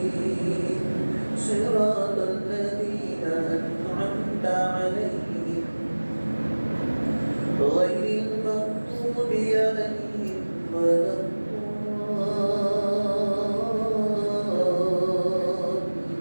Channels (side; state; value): both; inverted; correlation -1.00